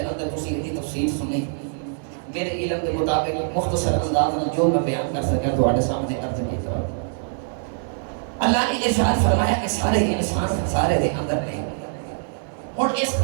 اندر تسی دی تفسیر سنی، میرے علم کے مطابق مختصر انداز میں جو میں بیان کر سکا تواڈے سامنے عرض کیتا۔ اللہ نے ارشاد فرمایا کہ سارے انسان خسارے دے اندر نہیں، اور اس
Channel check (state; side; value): silent; left; digital silence